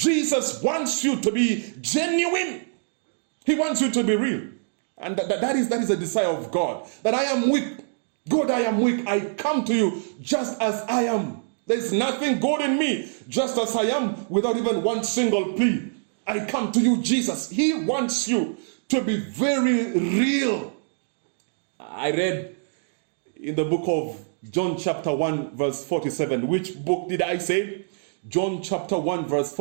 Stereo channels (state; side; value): silent; left; digital silence